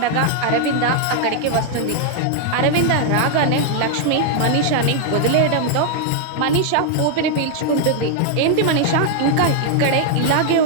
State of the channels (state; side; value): different; both; correlation 0.00